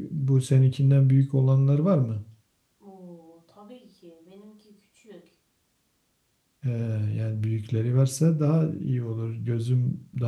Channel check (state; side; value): identical; both; correlation 1.00